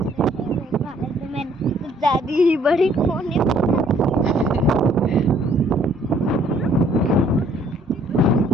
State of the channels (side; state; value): both; normal; correlation 0.62